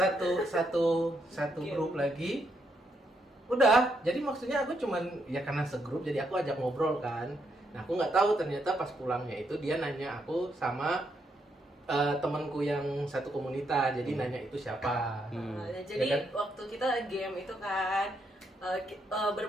grup lagi. Udah, jadi maksudnya aku cuman ya karena segrup jadi aku ajak ngobrol kan. Nah aku nggak tahu ternyata pas pulangnya itu dia nanya aku sama temanku yang satu komunitas, jadi nanya itu siapa. Jadi Ya kan? waktu kita game itu kan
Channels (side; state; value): both; normal; correlation 0.78